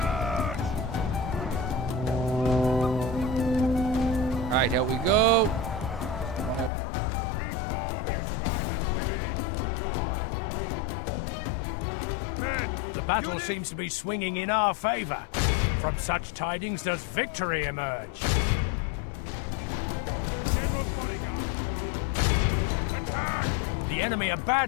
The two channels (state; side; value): drops out; right; at 6.7 s